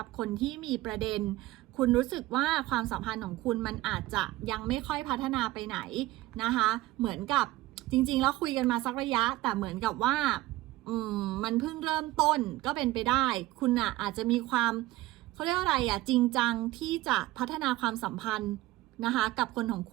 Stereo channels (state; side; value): quieter; left; 17.5 dB